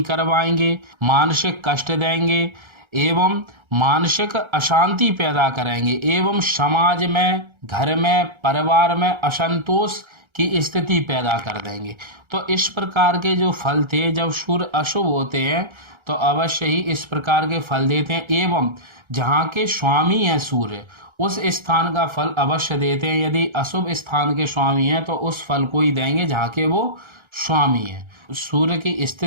करवाएंगे, मानसिक कष्ट देंगे एवं मानसिक अशांति पैदा करेंगे एवं समाज में, घर में, परिवार में असंतोष की स्थिति पैदा कर देंगे। तो इस प्रकार के जो फल थे जब सूर्य अशुभ होते हैं तो अवश्य ही इस प्रकार के फल देते हैं एवं जहाँ के स्वामी हैं सूर्य उस स्थान का फल अवश्य देते हैं। यदि अशुभ स्थान के स्वामी हैं तो उस फल को ही देंगे जहाँ के वो स्वामी हैं। सूर्य की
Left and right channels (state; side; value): late; left; 1.3 ms